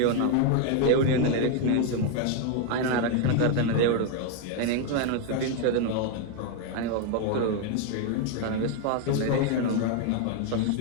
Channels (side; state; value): both; different; correlation 0.01